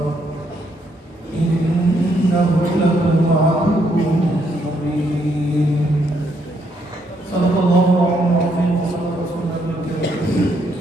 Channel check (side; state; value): both; normal; correlation 0.74